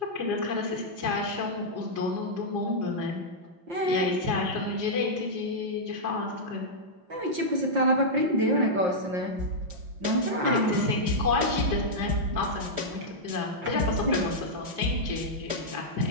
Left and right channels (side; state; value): left; late; 5.7 ms